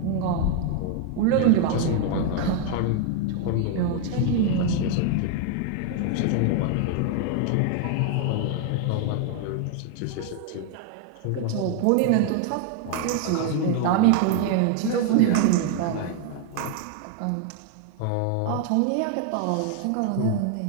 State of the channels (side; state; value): both; different; correlation 0.01